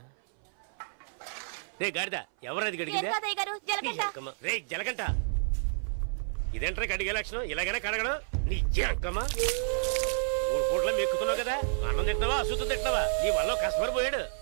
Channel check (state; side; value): silent; left; 58 dB below the other